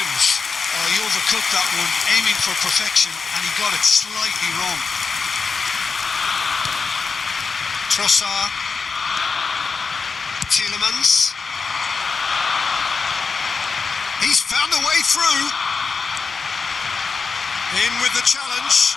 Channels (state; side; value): quieter; right; 4.9 dB